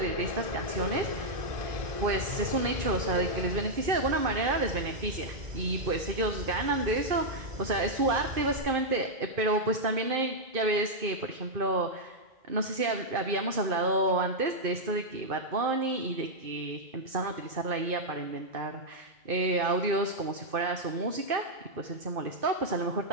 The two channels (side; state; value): left; late; 2.5 ms